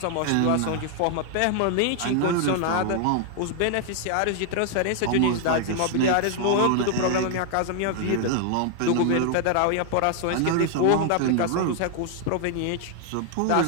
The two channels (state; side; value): different; both; correlation 0.00